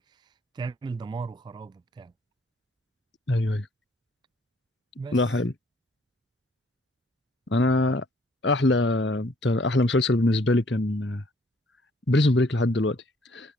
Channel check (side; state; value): both; normal; correlation 0.62